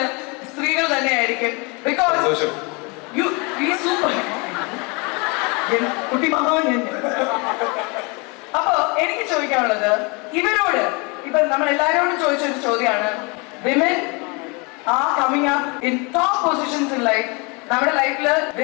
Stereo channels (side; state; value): right; quieter; 29.8 dB